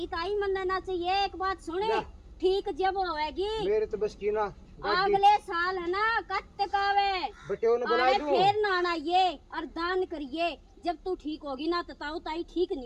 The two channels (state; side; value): identical; both; correlation 1.00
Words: ताई मनने ना चाहिए। एक बात सुने क्या? ठीक जब होएगी मेरे तो बस की ना अगले साल है ना कत्त कावे बटे ने बुला अरे दूं। फिर ना आइए और दान करिए। जब तू ठीक होगी ना तो ताऊ ताई ठीक